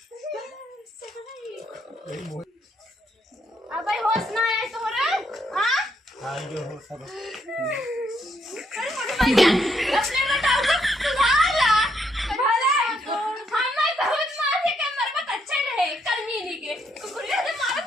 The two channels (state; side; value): normal; both; correlation 0.74